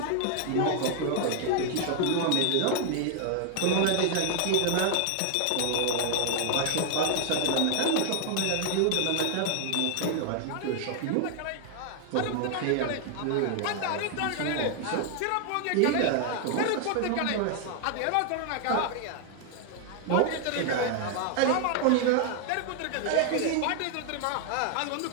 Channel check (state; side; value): different; both; correlation 0.00